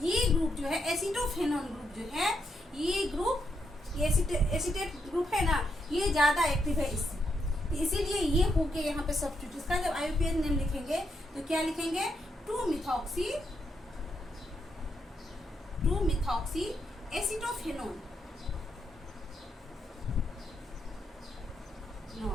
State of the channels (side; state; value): both; normal; correlation 0.80